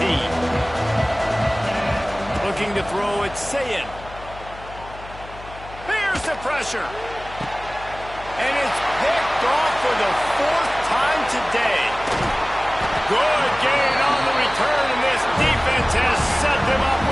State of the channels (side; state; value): left; noise; hum, 16 dB below the sound